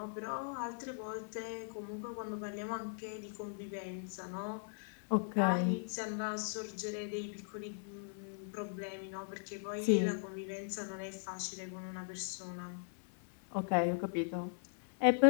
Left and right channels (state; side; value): silent; right; 52 dB below the other